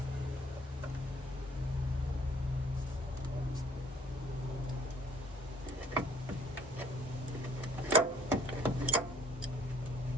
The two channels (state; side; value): normal; both; correlation 0.57